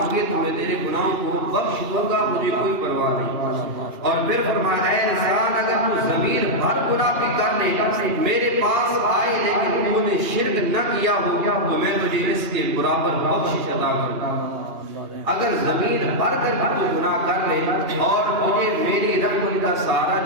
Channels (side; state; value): left; late; 2.9 ms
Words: تو میں تیرے گناہوں کو بخش دوں گا، مجھے کوئی پرواہ نہیں۔ اور پھر فرمایا اے انسان، اگر تو ضمیر بھر گناہ بھی کر لے میرے پاس آئے لیکن تو نے شرک نہ کیا ہو تو میں تجھے اس کے برابر بخشش عطا کروں گا۔ اگر ضمیر بھر کر بھی تو گناہ کر لے اور تجھے میری رحمت کا سہارا